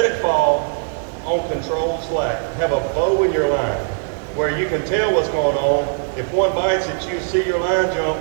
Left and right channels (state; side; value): silent; left; digital silence